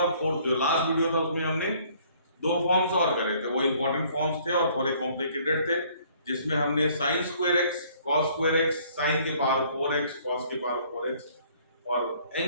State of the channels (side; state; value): both; inverted; correlation -0.59